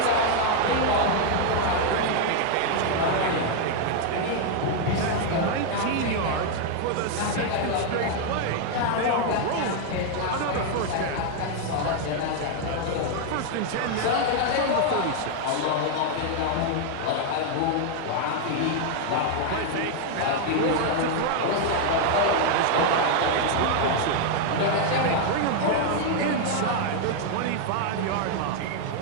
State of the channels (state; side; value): different; both; correlation 0.00